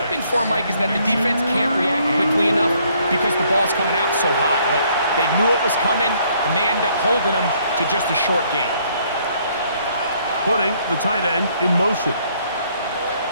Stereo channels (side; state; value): both; inverted; correlation -0.66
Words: for, Mike, is that the defense can't react quickly enough because the ball's coming out so hot. But they knew it was coming, and they end up holding him to just a short gain. Putting the tight end in motion.